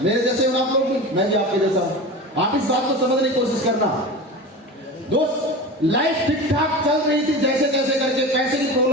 मेरे जैसे हो आप लोग भी, मैं भी आपके जैसा हूं। आप इस बात को समझने की कोशिश करना। दोस्त लाइफ ठीक ठाक चल रही थी, जैसे तैसे करके, पैसे की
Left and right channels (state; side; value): normal; both; correlation 0.29